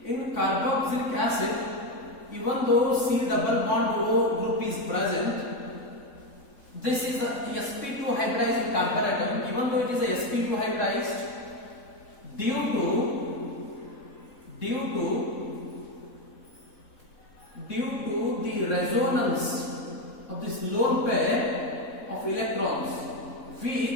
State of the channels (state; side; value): late; right; 3.8 ms